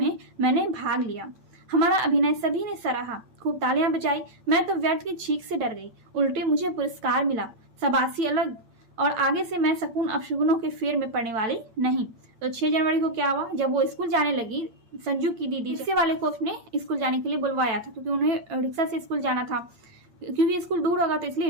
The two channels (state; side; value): late; left; 8.7 ms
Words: मैंने भाग लिया। हमारा अभिनय सभी ने सराहा, खूब तालियां बजाई। मैं तो व्यर्थ की छींक से डर गई, उल्टे मुझे पुरस्कार मिला, शाबाशी अलग। और आगे से मैं शकुन अपशकुनों के फेर में पड़ने वाली नहीं। तो 6 जनवरी को क्या हुआ, जब वो स्कूल जाने लगी, संजू की दीदी रिक्शे वाले को उसने स्कूल जाने के लिए बुलवाया था क्योंकि उन्हें रिक्शा से स्कूल जाना था। क्योंकि स्कूल दूर होगा तो